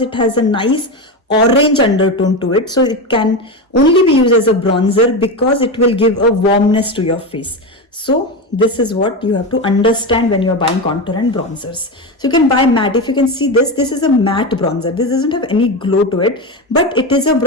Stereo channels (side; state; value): both; normal; correlation 0.17